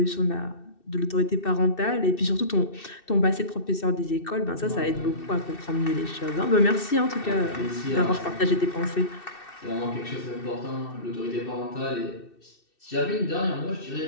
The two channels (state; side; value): late; right; 2.6 ms